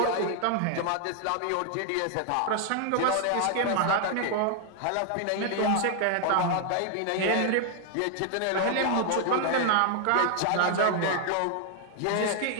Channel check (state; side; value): different; both; correlation 0.00